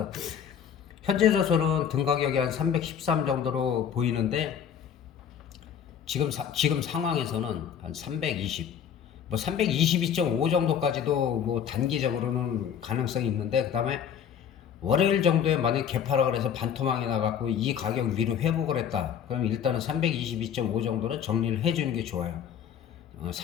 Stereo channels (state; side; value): quieter; right; 8.4 dB